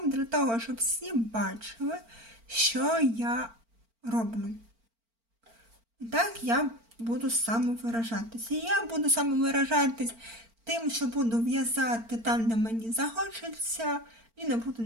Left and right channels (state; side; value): late; left; 4.4 ms